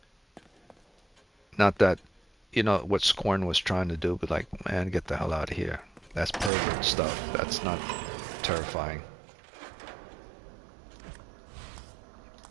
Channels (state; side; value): drops out; left; at 6.5 s